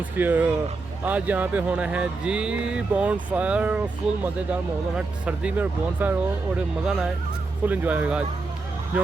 की। आज यहाँ पे होना है जी बॉन फायर। फुल मज़ेदार माहौल होना, सर्दी में बॉन फायर हो और मज़ा ना आए, फुल इंजॉय होगा आज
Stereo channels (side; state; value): left; quieter; 3.7 dB